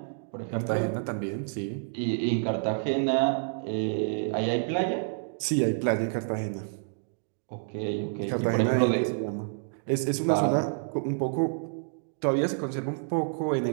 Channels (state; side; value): silent; left; digital silence